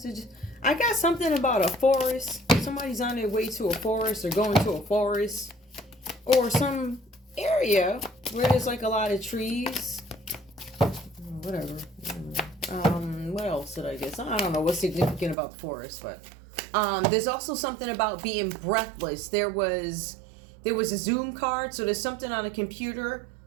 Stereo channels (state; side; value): drops out; left; at 15.4 s